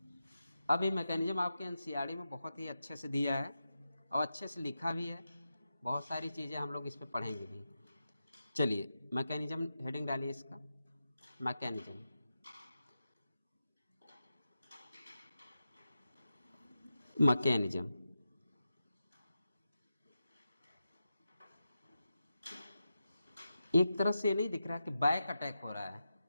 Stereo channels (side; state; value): both; inverted; correlation -0.90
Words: अब ये मैकेनिज्म आपके एनसीईआरटी में बहुत ही अच्छे से दिया है और अच्छे से लिखा भी है, बहुत सारी चीज़ें हम लोग इस पे पढ़ेंगे भी। चलिए मैकेनिज्म हेडिंग डालिए इसका, मैकेनिज्म। मैकेनिज्म एक तरह से नहीं दिख रहा कि बैक अटैक हो रहा है,